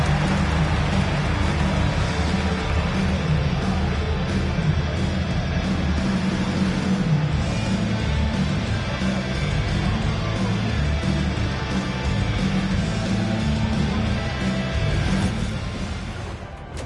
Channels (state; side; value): identical; both; correlation 1.00